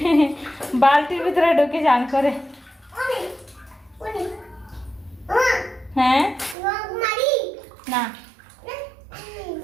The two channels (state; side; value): drops out; left; at 6.6 s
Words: বালতির ভিতরে ঢুকে চান করে। হ্যাঁ না